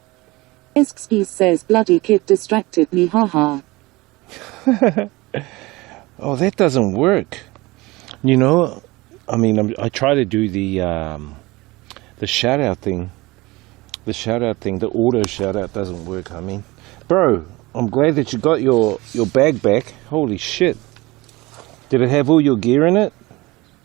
Esksky says, bloody kid distracted me, haha. Oh, that doesn't work. You know, I mean, I try to do the shout out thing. The shout out thing, the auto shout out doesn't work. I mean, bro, I'm glad that you got your bag back. Holy shit. Did it have all your gear in it?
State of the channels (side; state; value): left; quieter; 21.6 dB